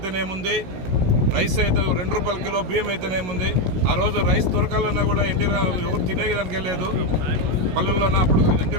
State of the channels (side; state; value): left; late; 16 ms